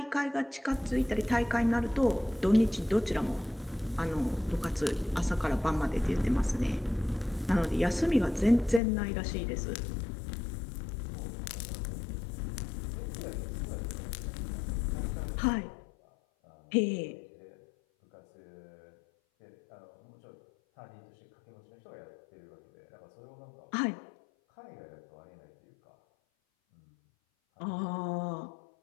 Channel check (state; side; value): drops out; right; at 8.8 s